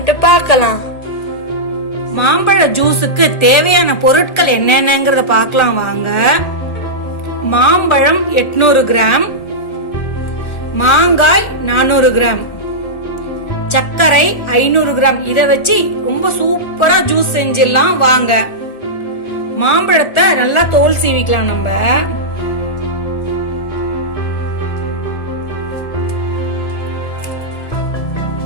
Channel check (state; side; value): late; right; 1.7 ms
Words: பார்க்கலாம். மாம்பழ ஜூஸுக்கு தேவையான பொருட்கள் என்னென்னங்கறத பார்க்கலாம் வாங்க. மாம்பழம் 800 கிராம், மாங்காய் 400 கிராம், சர்க்கரை 500 கிராம். இத வச்சு ரொம்ப சூப்பரா ஜூஸ் செஞ்சிடலாம் வாங்க. மாம்பழத்தை நல்லா தோல் சீவிக்கலாம் நம்ம.